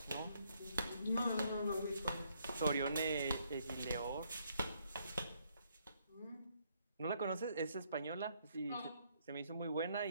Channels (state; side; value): inverted; both; correlation -0.71